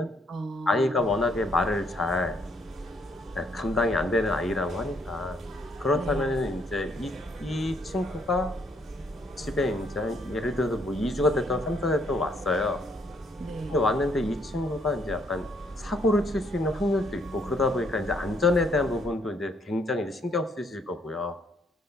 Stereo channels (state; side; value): normal; both; correlation 0.70